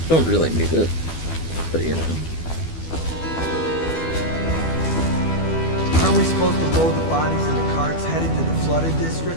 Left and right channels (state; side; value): late; right; 12 ms